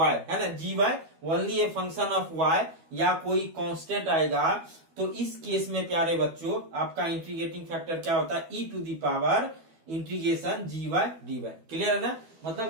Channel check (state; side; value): late; left; 12 ms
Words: है ना, g y only a function of y, या कोई कांस्टेंट आएगा, तो इस केस में प्यारे बच्चों आपका इंटीग्रेटिंग फैक्टर क्या होता है, e to the power integration g y d y, clear है ना।